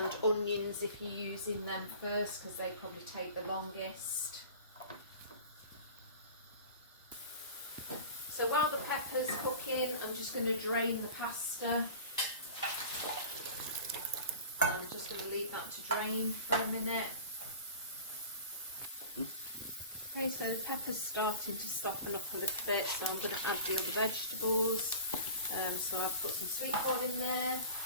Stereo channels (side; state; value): both; inverted; correlation -0.40